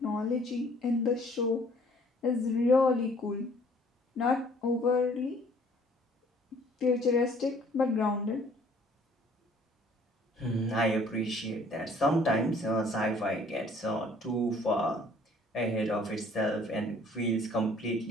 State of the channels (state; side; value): normal; both; correlation 0.57